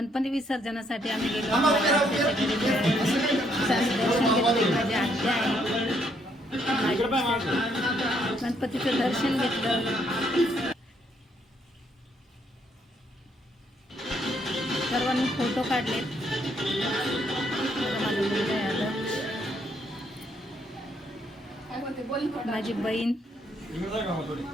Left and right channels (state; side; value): normal; both; correlation 0.71